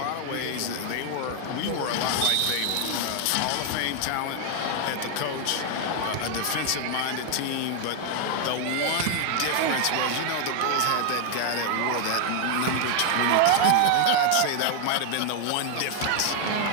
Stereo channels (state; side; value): different; both; correlation 0.00